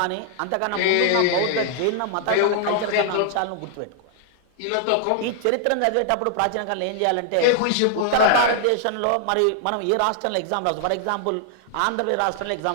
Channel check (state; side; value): different; both; correlation -0.01